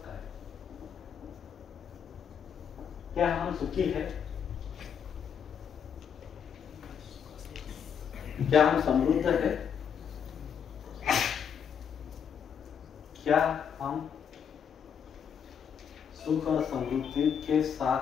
काय? क्या हम सुखी है? क्या हम समृद्ध है? क्या हम सुख और समृद्धि के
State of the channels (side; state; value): right; quieter; 7.6 dB